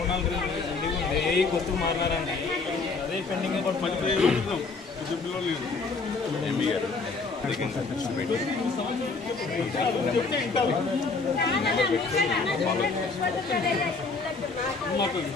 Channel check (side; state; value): right; quieter; 4.2 dB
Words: కొత్తగా మాట్లాడారండి, అదే పెండింగ్.